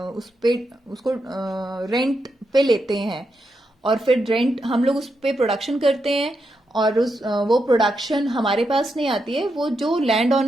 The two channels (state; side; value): normal; both; correlation 0.84